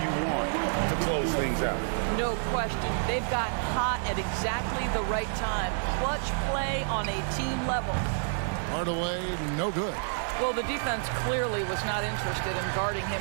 want to close things out. No question. They've got hot at exactly the right time. Clutch play on a team level. Hardaway, no good. Well, the defense clearly was not interested in guarding him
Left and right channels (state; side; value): silent; left; digital silence